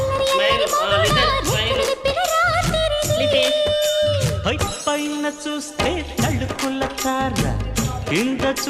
పైన చూస్తే తడుకుల తార కింద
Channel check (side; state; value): both; identical; correlation 1.00